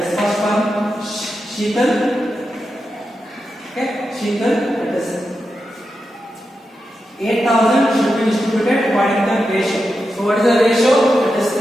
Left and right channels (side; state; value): both; normal; correlation 0.89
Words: first one, Sheetal. Okay, Sheetal. That is 8,000 should be distributed according to the ratio. So what is the ratio? That is